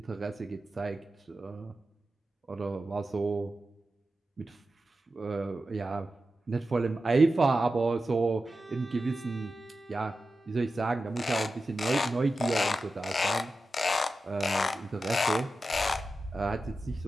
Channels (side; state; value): both; normal; correlation 0.92